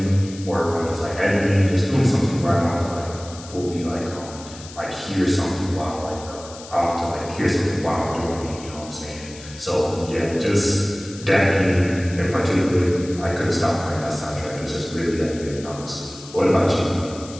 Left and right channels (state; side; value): noise; left; hiss, 17 dB below the sound